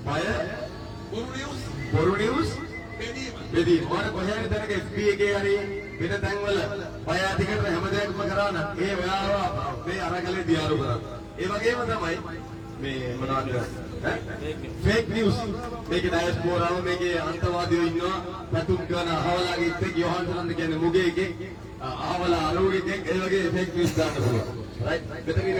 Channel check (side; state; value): both; identical; correlation 1.00